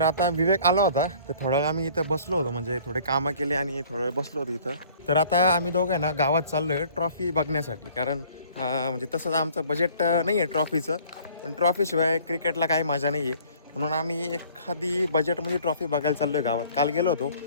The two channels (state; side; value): inverted; both; correlation -0.53